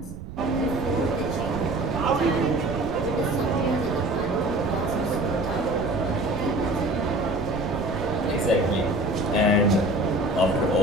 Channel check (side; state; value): right; noise; rumble, 11 dB below the sound